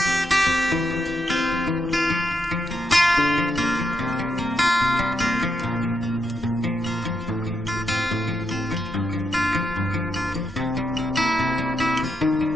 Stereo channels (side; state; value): both; normal; correlation 0.82